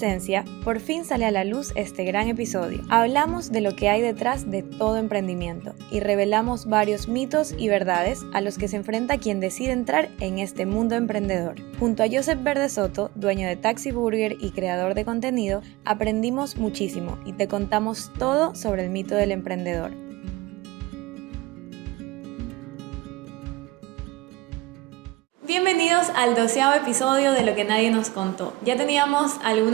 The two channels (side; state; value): left; quieter; 20.1 dB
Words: por fin sale a la luz este gran episodio. Hablamos de lo que hay detrás de todo emprendimiento y revelamos varios mitos y verdades a los que se enfrenta quien decide entrar en este mundo emprendedor. Junto a Joseph Verde Soto, dueño de Taxi Burger y creador de contenido, aprendimos muchísimo y te contamos todo sobre el mito del emprendedor. Bienvenidos al 12º episodio de Lo que nadie nos contó. Ya teníamos